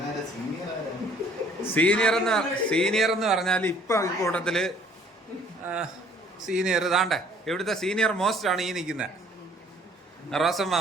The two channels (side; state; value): both; normal; correlation 0.58